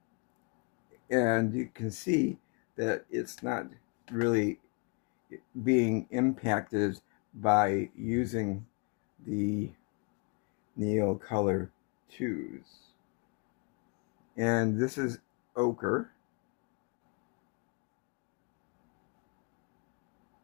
and you can see that it's not really being impacted by using the Neocolor 2s. And this is ochre.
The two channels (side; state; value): right; quieter; 33.3 dB